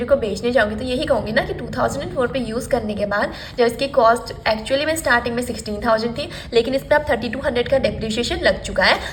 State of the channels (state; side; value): identical; both; correlation 1.00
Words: को बेचने जाऊँगी तो यही कहूँगी ना कि 2004 पे यूज़ करने के बाद जब इसकी कॉस्ट एक्चुअली में स्टार्टिंग में 16,000 थी, लेकिन इस पर अब 3,200 का डेप्रिसिएशन लग चुका है,